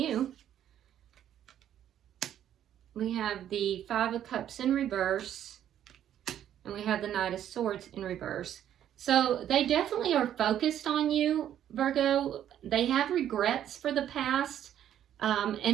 We have the Five of Cups in reverse, and we have the Knight of Swords in reverse. So they definitely are focused on you, Virgo. They have regrets for the past,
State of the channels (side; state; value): left; quieter; 10.7 dB